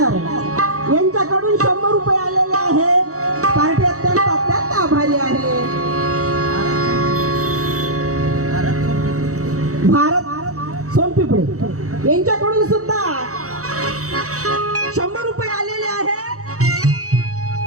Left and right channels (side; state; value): left; late; 0.65 ms